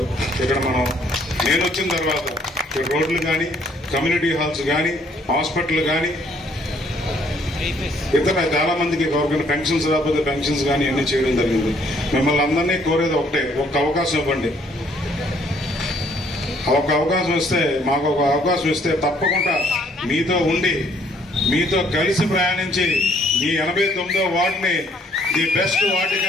ఇక్కడ నేను వచ్చిన తర్వాత రోడ్లు కానీ, కమ్యూనిటీ హాల్స్ కానీ, హాస్పిటల్ కానీ, ఇతర చాలా మందికి గవర్నమెంట్ పెన్షన్స్ రాకపోతే పెన్షన్స్ కానీ అన్ని చేయడం జరిగింది. మిమ్మల్ని అందరినీ కోరేది ఒకటే, ఒక్క అవకాశం ఇవ్వండి. ఒక అవకాశం ఇస్తే, మాకు ఒక అవకాశం ఇస్తే తప్పకుండా మీతో ఉండి, మీతో కలిసి ప్రయాణించి ఈ 89వ వార్డుని ది బెస్ట్ వార్డు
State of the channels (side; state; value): both; normal; correlation 0.64